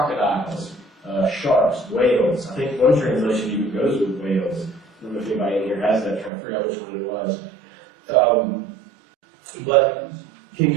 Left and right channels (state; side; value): drops out; left; at 6.3 s